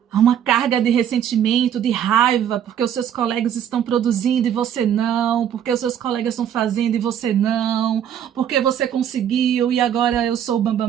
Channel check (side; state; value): left; quieter; 9.4 dB